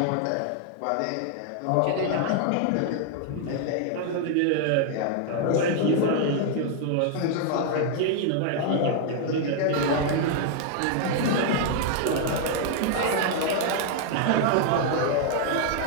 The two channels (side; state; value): both; different; correlation 0.00